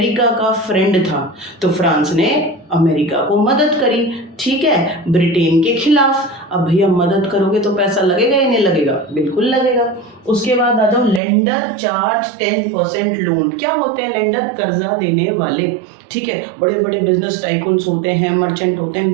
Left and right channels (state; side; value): drops out; left; at 11.2 s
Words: का फ्रेंड था तो फ्रांस ने अमेरिका को मदद करी, ठीक है, ब्रिटेन के खिलाफ। अब भैया मदद करोगे तो पैसा लगेगा या नहीं लगेगा, बिल्कुल लगेगा। उसके बाद आ जाओ, लेंडर चार्ज 10% लोन। क्या होते हैं लेंडर, कर्जा देने वाले। ठीक है, बड़े बड़े बिजनेस टाइकून्स होते हैं, मर्चेंट होते